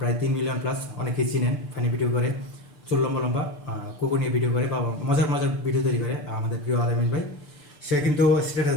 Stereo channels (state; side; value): late; right; 6.8 ms